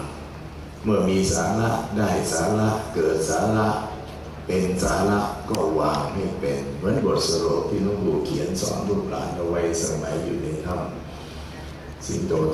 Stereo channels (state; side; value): identical; both; correlation 1.00